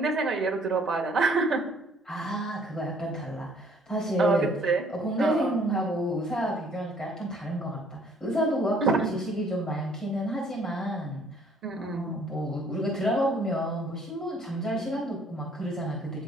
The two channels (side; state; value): both; normal; correlation 0.60